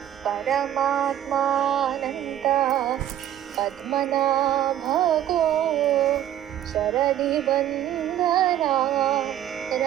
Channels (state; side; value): quieter; left; 11.7 dB